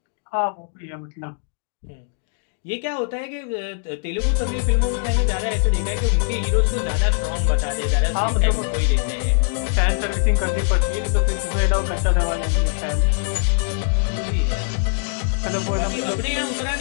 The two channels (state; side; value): silent; right; 64 dB below the other